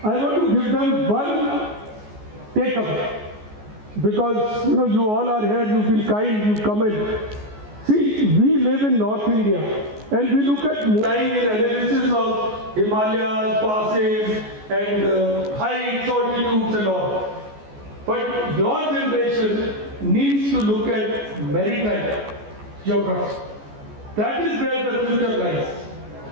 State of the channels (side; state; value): left; late; 14 ms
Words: I want to give them one takeaway, because you all are here, you've been kind, you come in. See, we live in North India, and we look at time in analysis of Himalayas, passes, and heights, altitudes and all. But your generation needs to look at maritime geography. That is where the future lies.